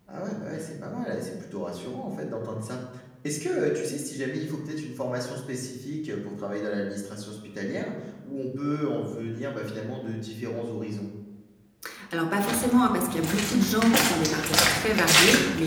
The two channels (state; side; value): identical; both; correlation 1.00